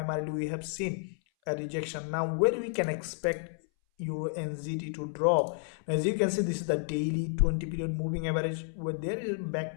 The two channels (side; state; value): right; silent; 57 dB below the other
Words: we have seen a rejection. Now where we can expect EURUSD to drop? Now, as you can see, this is the daily 20 period moving average, where there is